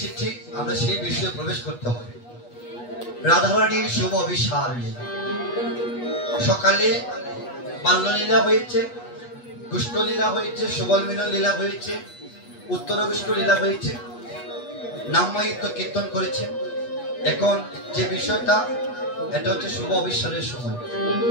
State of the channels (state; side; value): late; right; 8.3 ms